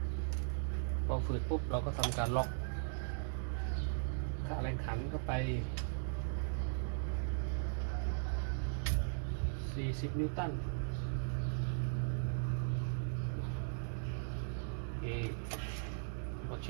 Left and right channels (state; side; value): silent; left; digital silence